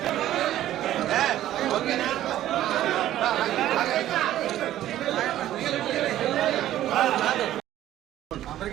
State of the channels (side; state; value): left; quieter; 13.1 dB